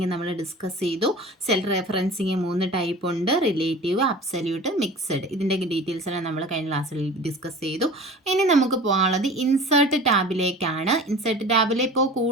നമ്മൾ ഡിസ്കസ് ചെയ്തു. സെൽ റെഫറൻസിങ് 3 ടൈപ്പ് ഉണ്ട്: റിലേറ്റീവ്, അബ്സല്യൂട്ട്, മിക്സഡ്. ഇതിൻ്റെ ഡീറ്റെയിൽസ് എല്ലാം നമ്മൾ കഴിഞ്ഞ ക്ലാസ്സിൽ ഡിസ്കസ് ചെയ്തു. ഇനി നമുക്ക് പോകാനുള്ളത് ഇൻസേർട്ട് ടാബിലേക്കാണ്. ഇൻസേർട്ട് ടാബിൽ ഇപ്പോൾ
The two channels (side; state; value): both; normal; correlation 0.39